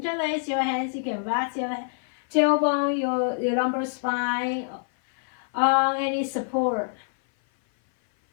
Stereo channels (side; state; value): right; silent; 57 dB below the other